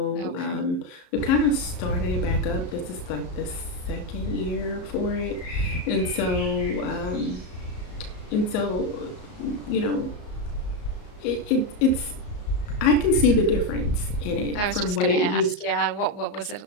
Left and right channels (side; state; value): right; late; 34 ms